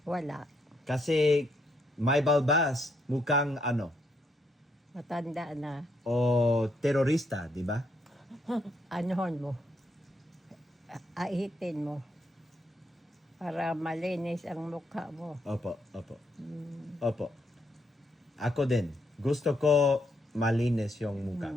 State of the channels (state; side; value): normal; both; correlation 0.75